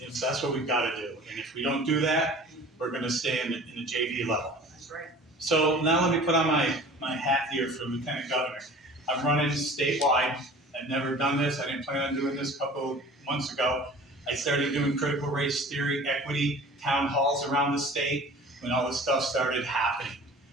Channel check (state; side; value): normal; both; correlation 0.44